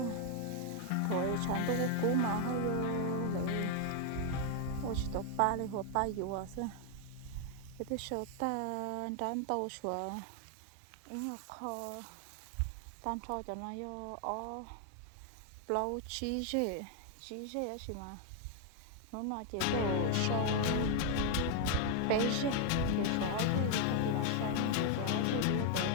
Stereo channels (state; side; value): different; both; correlation 0.00